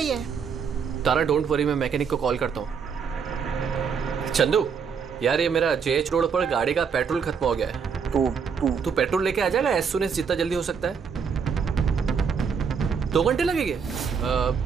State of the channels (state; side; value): quieter; left; 6.3 dB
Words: है। तारा डोंट वरी, मैं मैकेनिक को कॉल करता हूँ। चंदू यार, ये मेरा जेएच रोड पर गाड़ी का पेट्रोल खत्म हो गया है। तू पेट्रोल लेके आ जाएगा एज सून एज जितना जल्दी हो सकता है। 2 घंटे लगेंगे।